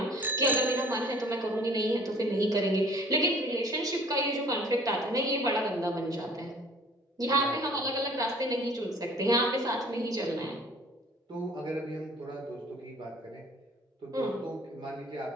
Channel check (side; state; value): both; normal; correlation 0.51